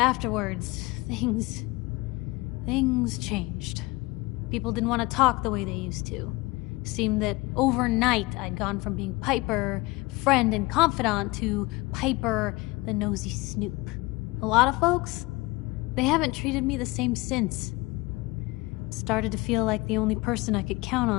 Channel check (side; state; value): right; quieter; 22.8 dB